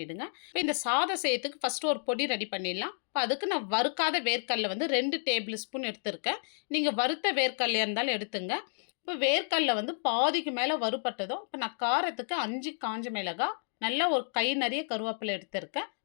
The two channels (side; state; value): right; silent; digital silence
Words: இப்போ இந்த சாதம் செய்யறதுக்கு ஃபஸ்ட்டு ஒரு பொடி ரெடி பண்ணிடலாம். இப்போ அதுக்கு நான் வறுக்காத வேர்க்கடலை 2 டேபிள் ஸ்பூன் எடுத்திருக்கேன். நீங்கள் வறுத்த வேர்க்கடலையாக இருந்தாலும் எடுத்துங்க. இப்போ வேர்க்கடலை பாதிக்கு மேலே வறுபட்டதும் இப்போ நான் காரத்துக்கு 5 காஞ்ச மிளகாய், நல்லா ஒரு கை நிறைய கருவேப்பிலை எடுத்திருக்கேன்.